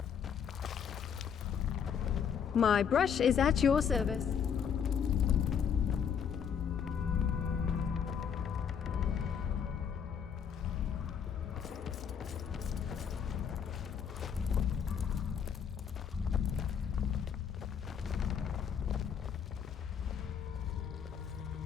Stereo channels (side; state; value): right; quieter; 7.6 dB